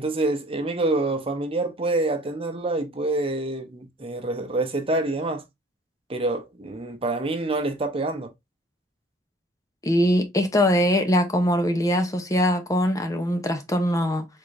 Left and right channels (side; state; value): both; normal; correlation 0.56